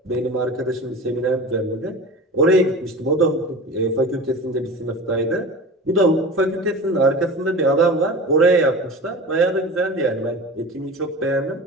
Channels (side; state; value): both; normal; correlation 0.33